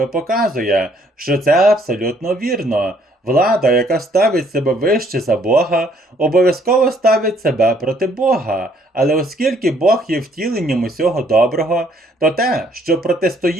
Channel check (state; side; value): normal; both; correlation 0.65